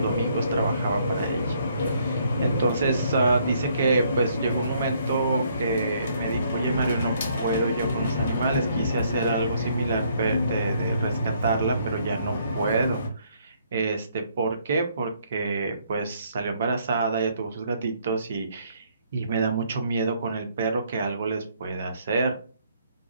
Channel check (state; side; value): inverted; both; correlation -0.68